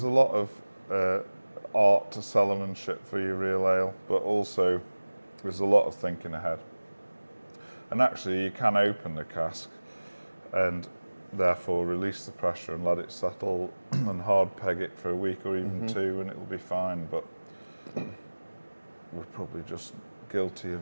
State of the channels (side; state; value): both; inverted; correlation -1.00